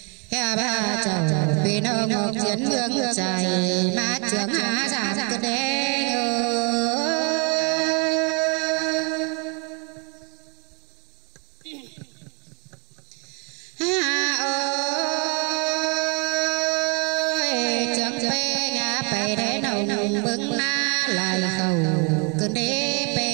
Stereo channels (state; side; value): quieter; left; 32.8 dB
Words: ba chầu bên nông chiến mương trời mà trước giảm cơn đê